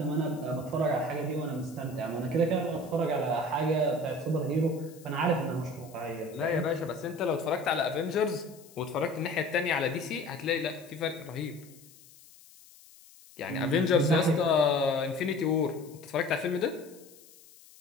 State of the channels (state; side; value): noise; left; hiss, 23 dB below the sound